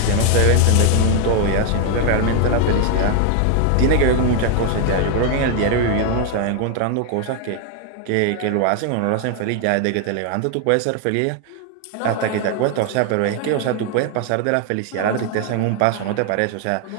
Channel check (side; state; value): both; different; correlation 0.00